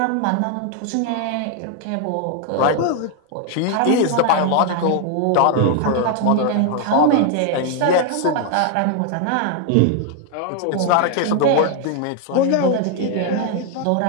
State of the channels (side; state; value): both; different; correlation 0.00